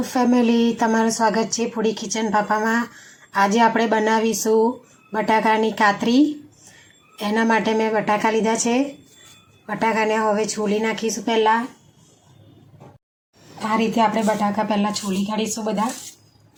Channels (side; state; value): both; identical; correlation 1.00